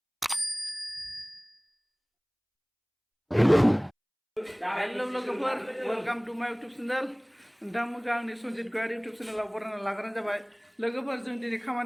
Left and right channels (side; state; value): both; identical; correlation 1.00